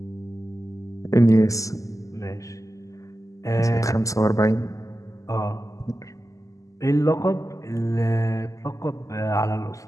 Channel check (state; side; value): late; right; 0.16 ms